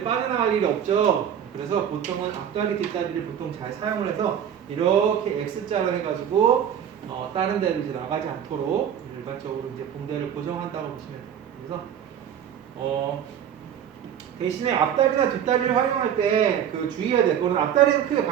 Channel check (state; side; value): quieter; left; 9.2 dB